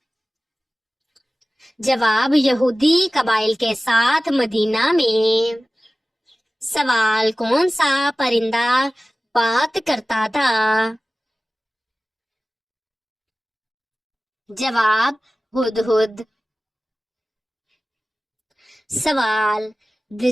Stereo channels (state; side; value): normal; both; correlation 0.97